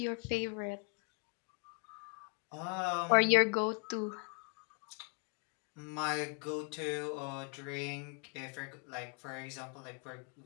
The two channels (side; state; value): right; quieter; 37.7 dB